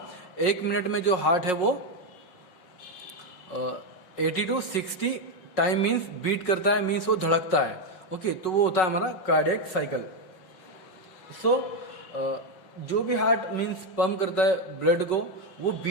एक मिनट में जो हार्ट है वो 80 to 60 टाइम मीन्स बीट करता है, मीन्स वो धड़कता है. ओके, तो वो होता है हमारा कार्डियक साइकिल. सो जो भी हार्ट मीन्स पंप करता है ब्लड को, वो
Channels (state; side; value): late; right; 5.4 ms